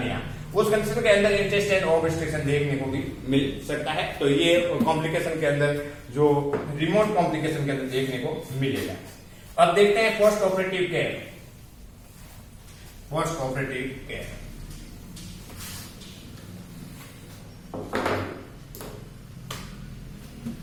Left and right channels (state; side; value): identical; both; correlation 1.00